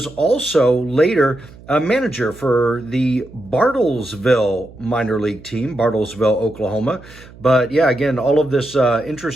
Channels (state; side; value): noise; right; hum, 21 dB below the sound